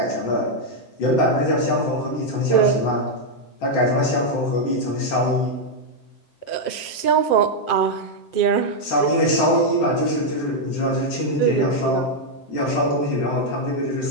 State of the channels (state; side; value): late; right; 7.6 ms